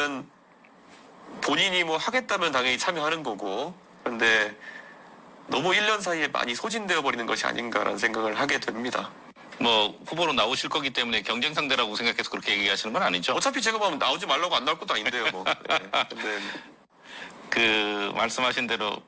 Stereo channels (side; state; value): both; identical; correlation 1.00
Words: 본인이 뭐 하겠다면 당연히 참여하는 거고 그런데 너무 1년 사이에 많이 소진되어 버리는 것이 아닌가라는 생각을 하게 됩니다. 뭐 후보로 나오실 거기 때문에 경쟁 상대라고 생각해서 그렇게 얘기하시는 건 아니죠? 어차피 제가 보면 나오지 말라고 안 나올 것도 아닌데요, 뭐. 네. 근데 그 말씀하신 대로